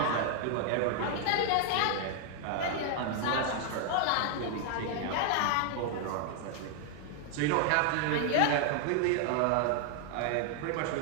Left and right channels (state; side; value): different; both; correlation 0.00